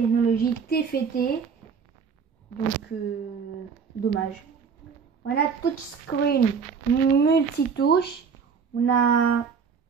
TFT. Donc dommage. On a touchscreen multitouche. On a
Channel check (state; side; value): quieter; left; 6.1 dB